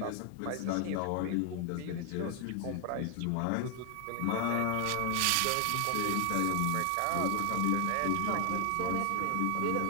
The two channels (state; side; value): different; both; correlation 0.00